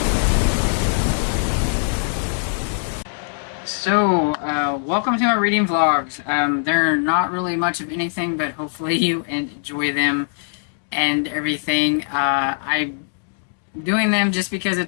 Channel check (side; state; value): right; silent; digital silence